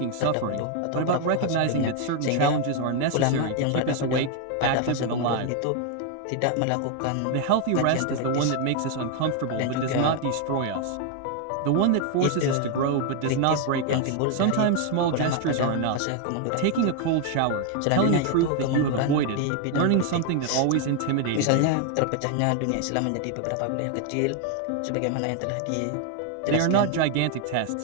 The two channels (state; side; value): different; both; correlation 0.00